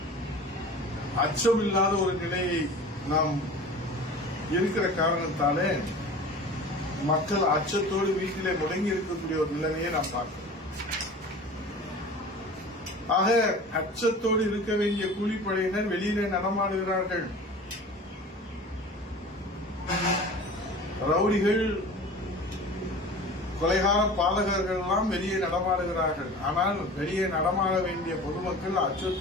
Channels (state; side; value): normal; both; correlation 0.39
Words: அச்சமில்லாத ஒரு நிலையை நாம் இருக்கிற காரணத்தாலே மக்கள் அச்சத்தோடு வீட்டிலே முடங்கி இருக்கக்கூடிய ஒரு நிலைமையை நாம் பார்க்கிறோம். ஆக அச்சத்தோடு இருக்க வேண்டிய கூலிப்படையினர் வெளியிலே நடமாடுகிறார்கள். ரவுடிகள் கொலைகார பாதகர்கள் எல்லாம் வெளியே நடமாடுகிறார்கள். ஆனால் வெளியே நடமாட வேண்டிய பொதுமக்கள்